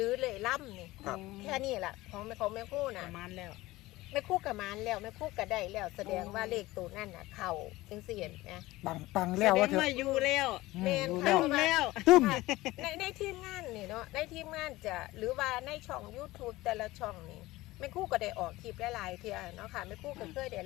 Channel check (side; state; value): right; quieter; 18.6 dB